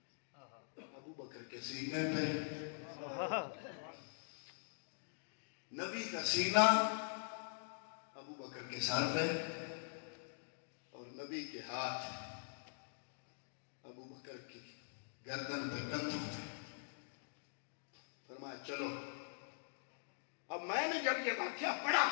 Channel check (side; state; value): right; silent; digital silence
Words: ابو بکر کے سینے پہ، نبی کا سینہ ابو بکر کے سر پہ، اور نبی کے ہاتھ ابو بکر کی گردن پہ، کندھوں پہ. فرمایا چلو. اب میں نے جب یہ واقعہ پڑھا،